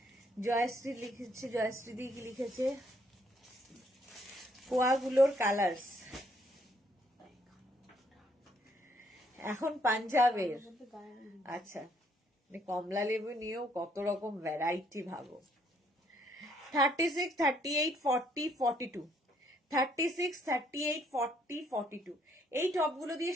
জয়শ্রী লিখেছে, জয়শ্রী দি কি লিখেছে, কোয়াগুলোর কালার্স। এখন পাঞ্জাবের। বলতে গায়ে আচ্ছা, মানে কমলা লেবু নিয়েও কত রকম ভ্যারাইটি ভাবো। 36, 38, 40, 42, 36, 38, 40, 42 এই টপগুলো দিয়ে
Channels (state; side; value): normal; both; correlation 0.68